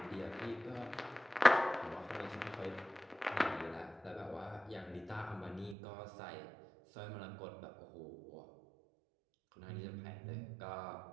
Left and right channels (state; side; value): drops out; left; at 5.8 s